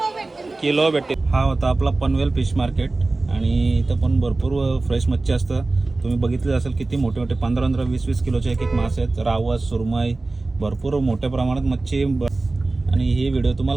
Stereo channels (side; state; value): left; quieter; 3.3 dB